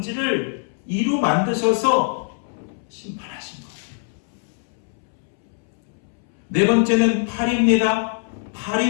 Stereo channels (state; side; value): silent; right; 64 dB below the other